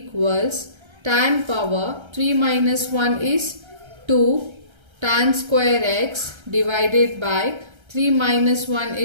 tan power 3 minus 1 is 2 tan square x divided by 3 minus 1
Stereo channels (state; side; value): late; left; 1.3 ms